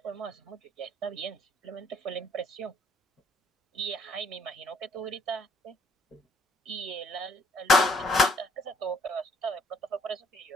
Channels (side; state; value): both; normal; correlation 0.64